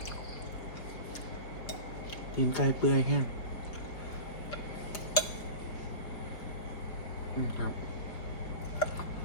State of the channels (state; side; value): late; right; 4.8 ms